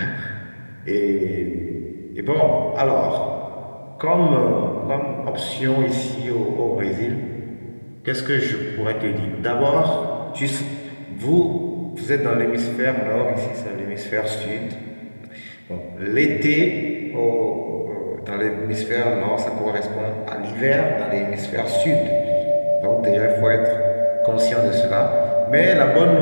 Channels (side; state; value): both; inverted; correlation -1.00